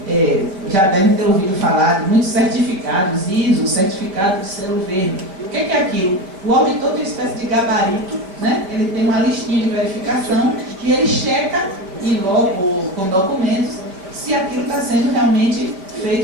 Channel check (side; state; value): left; late; 5.1 ms